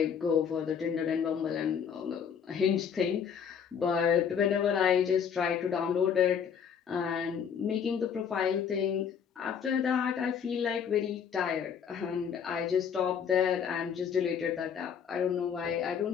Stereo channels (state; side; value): quieter; right; 7.4 dB